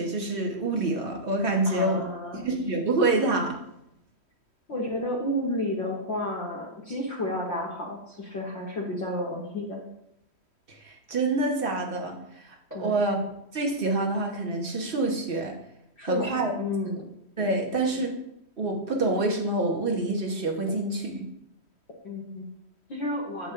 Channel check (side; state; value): right; late; 3.1 ms